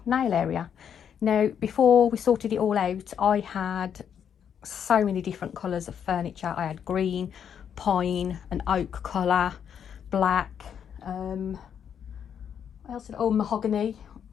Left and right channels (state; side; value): quieter; right; 8.3 dB